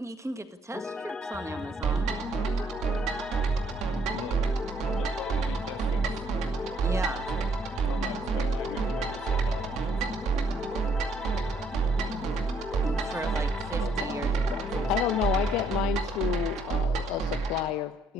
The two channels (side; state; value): both; normal; correlation 0.67